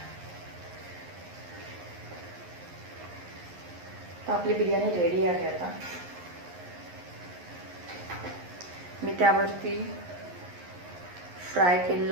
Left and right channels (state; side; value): late; left; 11 ms